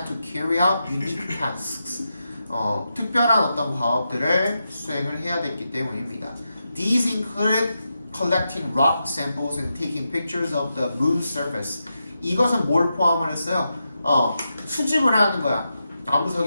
to carry out unique tasks. 특별한 어떤 과업들을 수행을 해야 됐기 때문입니다. These included collecting rock samples and taking pictures of the moon's surface. 이것은 뭘 포함을 했어요? 수집을 하는 거야.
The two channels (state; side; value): inverted; both; correlation -0.87